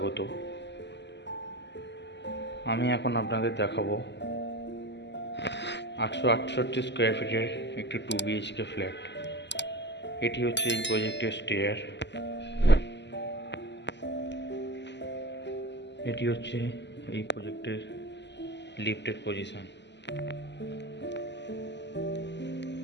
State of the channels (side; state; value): right; late; 0.51 ms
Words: আমি এখন আপনাদের দেখাবো 868 স্কোয়ার ফিটের একটি 2 BHK ফ্ল্যাট। এটি হচ্ছে এই প্রজেক্টের স্টেয়ার, এটি হচ্ছে এই প্রজেক্টের লিফটের পজিশন।